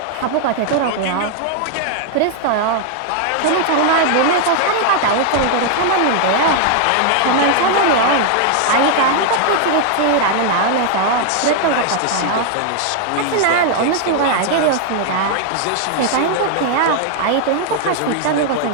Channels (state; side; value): different; both; correlation 0.00